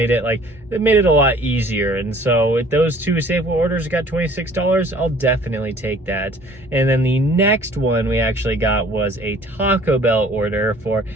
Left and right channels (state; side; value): normal; both; correlation 0.53